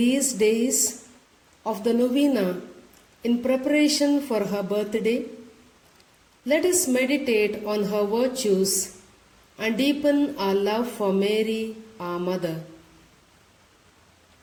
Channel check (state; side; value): identical; both; correlation 1.00